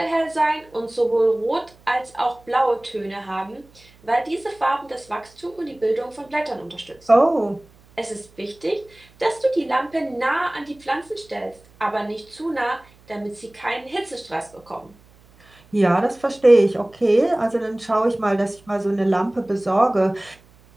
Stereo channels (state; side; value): noise; right; hum, 28 dB below the sound